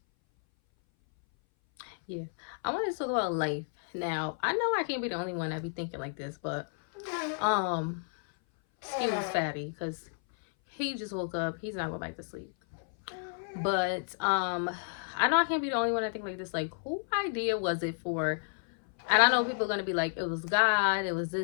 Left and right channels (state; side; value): silent; right; 57 dB below the other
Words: Yeah, I wanted to talk about life. Now I know I can't be the only one that be thinking like this, but um, excuse Fatty because he just woke up. He's not going back to sleep. But I know I can't be the only one that think like this. Like, who idea was it for? And I know people are gonna be like, it was God, it was